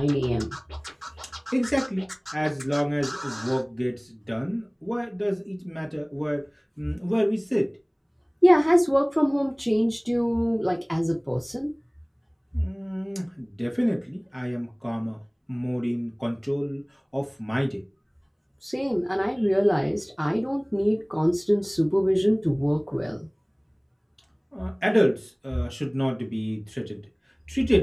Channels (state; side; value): identical; both; correlation 1.00